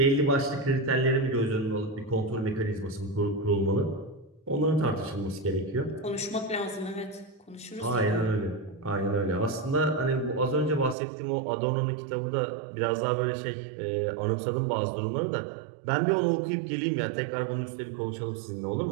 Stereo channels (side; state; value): left; drops out; at 11.0 s